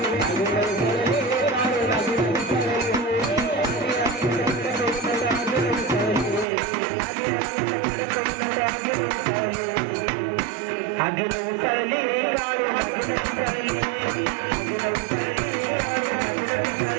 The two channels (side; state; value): left; drops out; at 6.5 s